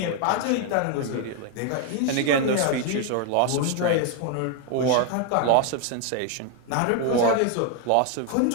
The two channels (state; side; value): different; both; correlation 0.00